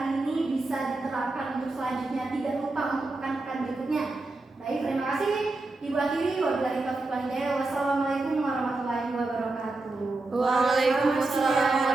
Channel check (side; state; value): left; quieter; 3.2 dB